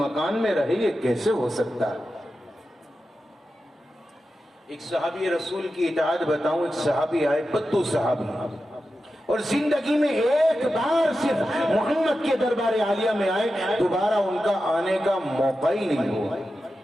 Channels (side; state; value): both; normal; correlation 0.91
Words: میں رہے یہ کیسے ہو سکتا؟ ایک صحابی رسول کی اطاعت بتاؤں، ایک صحابی آئے بدو صحابی، اور زندگی میں ایک بار صرف محمد کے دربار عالیہ میں آئے، دوبارہ ان کا آنے کا موقع ہی نہیں ہوا۔